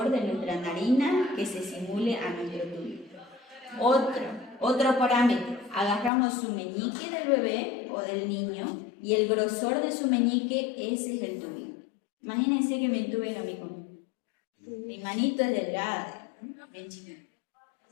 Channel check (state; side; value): drops out; right; at 6.1 s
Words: de nuestra narina que se simule a nuestro tubo. Otro parámetro, agarramos su meñique del bebé o del niño y el grosor de su meñique, ese es el tubo. Imagínense que me entuben a mí con mi manito es delgada, bien chiquita.